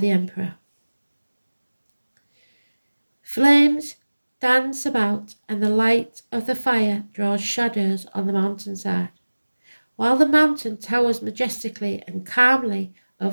Emperor. Flames dance about, and the light of the fire draws shadows on the mountainside. While the mountain towers majestically and calmly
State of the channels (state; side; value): inverted; both; correlation -1.00